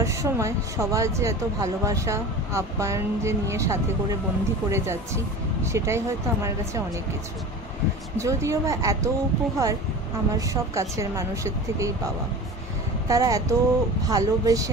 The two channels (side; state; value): both; normal; correlation 0.34